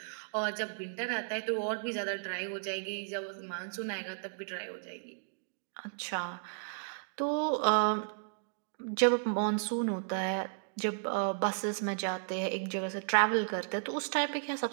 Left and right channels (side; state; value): left; silent; digital silence